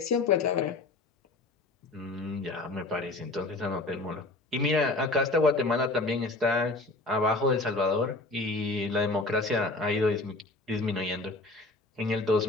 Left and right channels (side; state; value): right; quieter; 3.1 dB